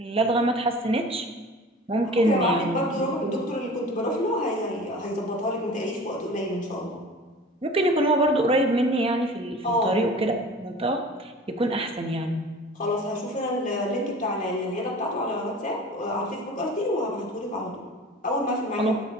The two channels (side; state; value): both; normal; correlation 0.41